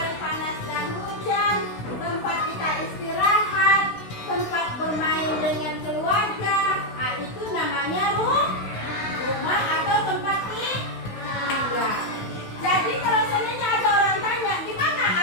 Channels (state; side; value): late; right; 16 ms